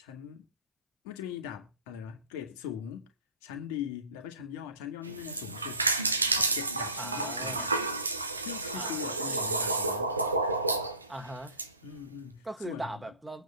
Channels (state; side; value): inverted; both; correlation -0.47